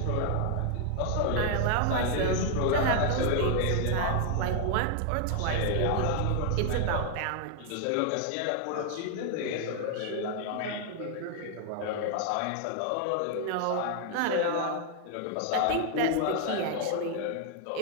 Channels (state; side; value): different; both; correlation 0.00